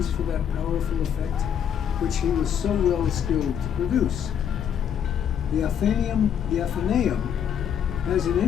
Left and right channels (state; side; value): quieter; right; 8.6 dB